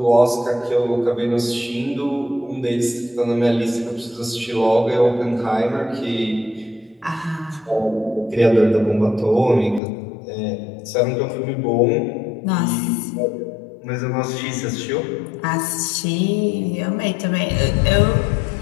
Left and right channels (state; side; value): drops out; right; at 9.8 s